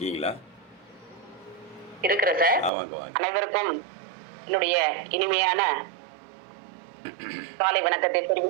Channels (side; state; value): left; drops out; at 2.7 s